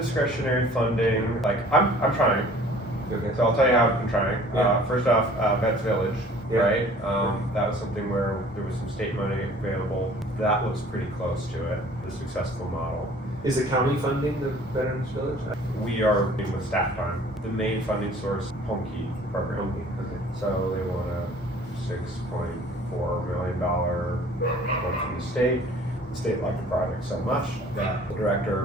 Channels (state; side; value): normal; both; correlation 0.51